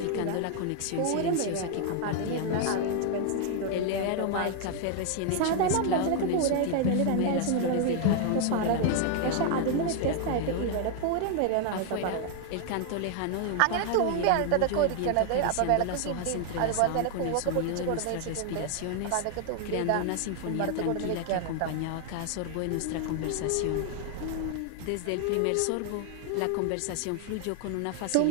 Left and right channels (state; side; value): different; both; correlation 0.00